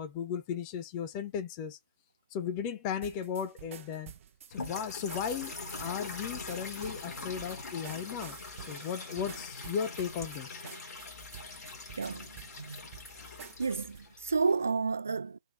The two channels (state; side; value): inverted; both; correlation -0.48